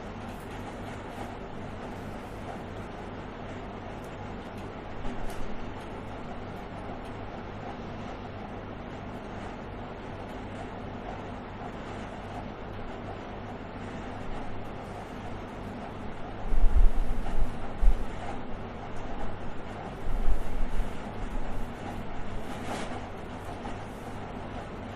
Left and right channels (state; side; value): identical; both; correlation 1.00